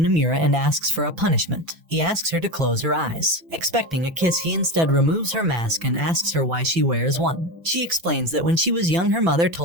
and asks for a punishment. He asks her to close her eyes. Expecting a kiss, he instead removes her mask and asks her why she wears one. She explains that when she was young, her mother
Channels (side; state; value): left; late; 6.0 ms